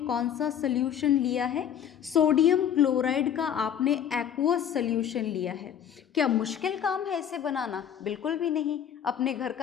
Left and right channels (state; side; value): quieter; right; 9.2 dB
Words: सा सोल्यूशन लिया है, सोडियम क्लोराइड का आपने एक्वस सोल्यूशन लिया है, क्या मुश्किल काम है इसे बनाना? बिल्कुल भी नहीं। अपने घर